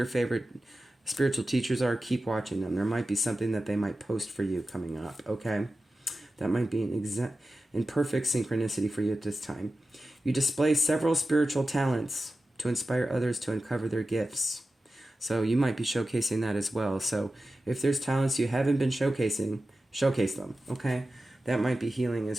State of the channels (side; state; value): both; normal; correlation 0.94